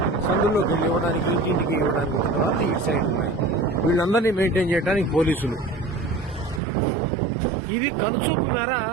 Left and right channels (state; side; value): drops out; left; at 6.6 s